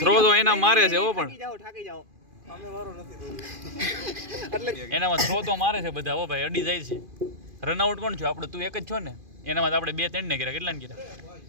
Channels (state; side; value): late; left; 2.5 ms